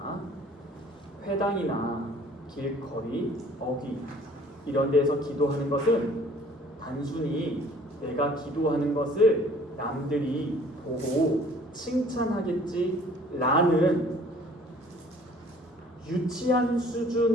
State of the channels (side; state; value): both; normal; correlation 0.53